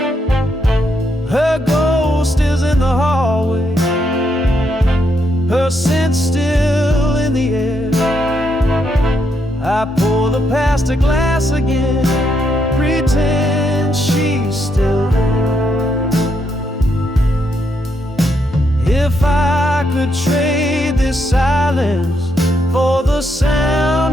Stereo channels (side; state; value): both; normal; correlation 0.78